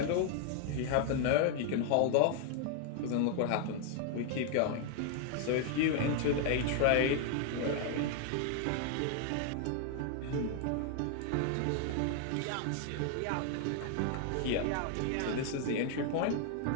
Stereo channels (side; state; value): both; different; correlation 0.00